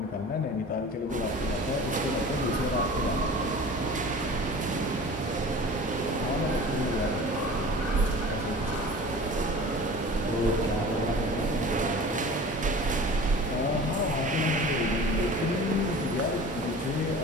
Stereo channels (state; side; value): normal; both; correlation 0.40